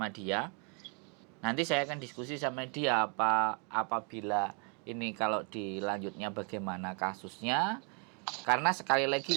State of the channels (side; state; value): left; quieter; 38.0 dB